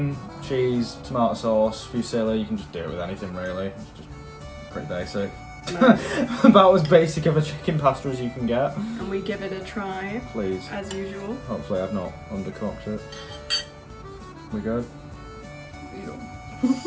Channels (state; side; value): identical; both; correlation 1.00